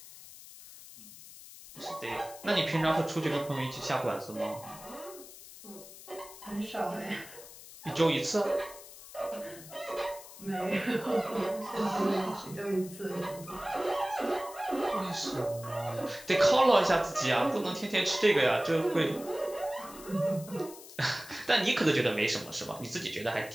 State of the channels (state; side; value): noise; left; hiss, 17 dB below the sound